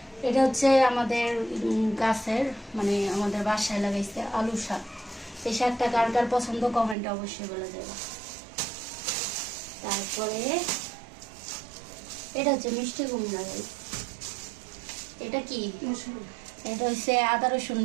এটা হচ্ছে আমাদের গাছের, মানে আমাদের বাসায় লাগাইছে আলু শাক। এই শাকটা কার কার পছন্দ কমেন্টে অবশ্যই বলে যাবে। তারপরে এটা হচ্ছে মিষ্টি কুমড়া। এটা কি? এটা হচ্ছে আদা রসুন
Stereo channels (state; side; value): drops out; left; at 7.0 s